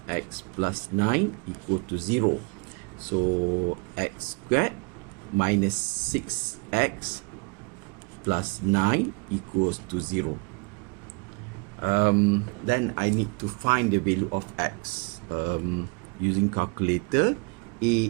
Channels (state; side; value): quieter; left; 32.3 dB